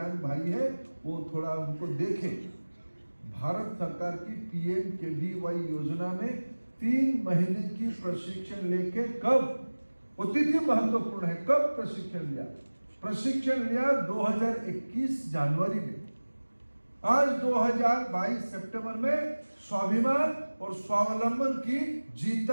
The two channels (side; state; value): both; inverted; correlation -1.00